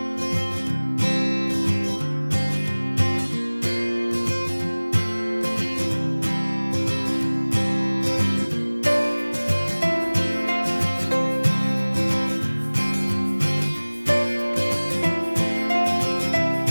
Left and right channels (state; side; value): inverted; both; correlation -1.00